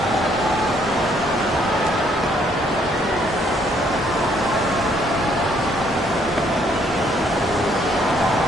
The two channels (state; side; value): normal; both; correlation 0.67